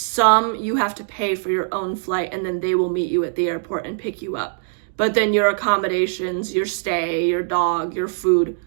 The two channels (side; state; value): left; silent; digital silence